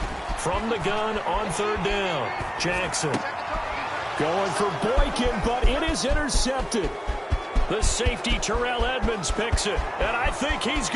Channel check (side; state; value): both; identical; correlation 1.00